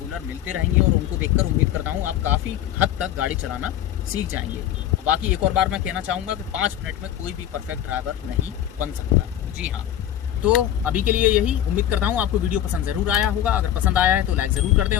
मिलते रहेंगे, और उनको देखकर उम्मीद करता हूँ आप काफ़ी हद तक गाड़ी चलाना सीख जाएंगे। और बाकी एक और बार मैं कहना चाहूँगा कि 5 मिनट में कोई भी परफेक्ट ड्राइवर नहीं बन सकता। जी हाँ, तो अभी के लिए यही। उम्मीद करता हूँ आपको वीडियो पसंद ज़रूर आया होगा। अगर पसंद आया है तो लाइक ज़रूर कर दें,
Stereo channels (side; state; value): right; quieter; 11.4 dB